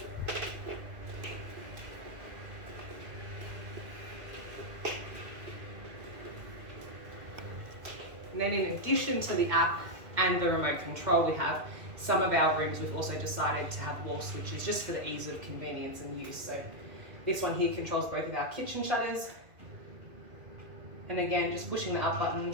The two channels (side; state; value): left; late; 2.2 ms